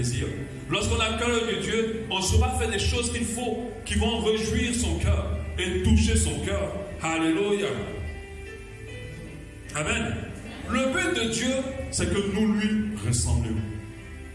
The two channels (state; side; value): identical; both; correlation 1.00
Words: Lorsqu'on a le cœur de Dieu, on saura faire des choses qu'il faut, qui vont réjouir son cœur et toucher son cœur. Alléluia. Amen. Le but de Dieu, c'est que nous lui ressemblions.